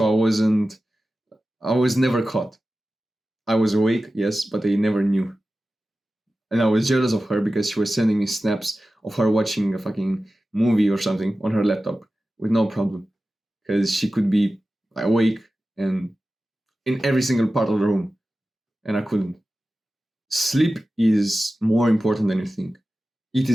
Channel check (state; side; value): normal; both; correlation 0.95